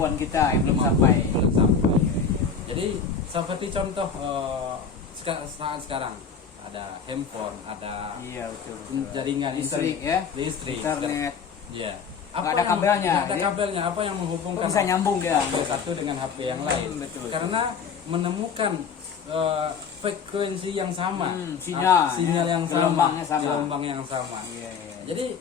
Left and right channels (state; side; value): quieter; right; 6.0 dB